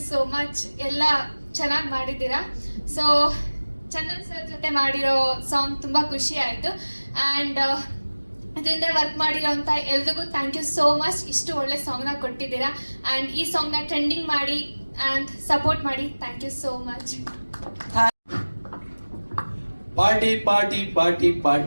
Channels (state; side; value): inverted; both; correlation -1.00